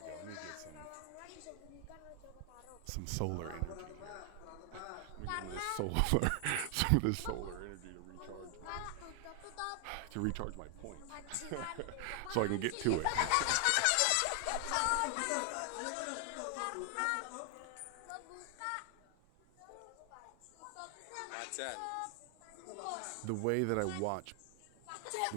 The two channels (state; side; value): different; both; correlation 0.00